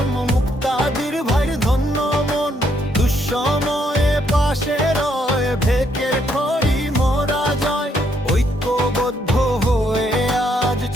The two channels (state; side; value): normal; both; correlation 0.73